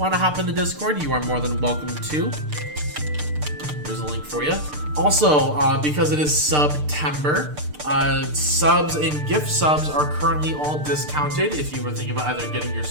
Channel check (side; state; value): left; late; 6.7 ms